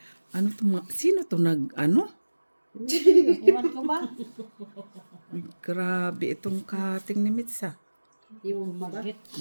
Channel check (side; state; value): both; inverted; correlation -1.00